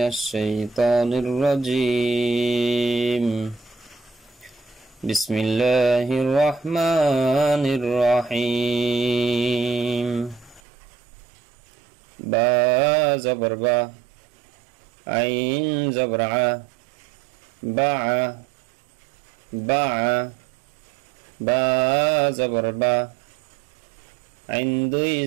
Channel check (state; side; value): drops out; left; at 10.6 s